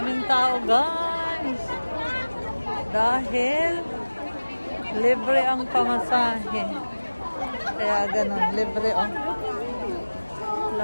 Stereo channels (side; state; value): both; inverted; correlation -1.00